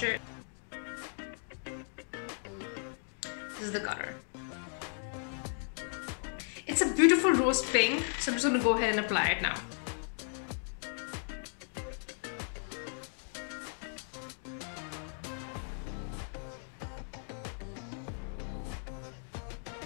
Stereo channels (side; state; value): right; silent; 54 dB below the other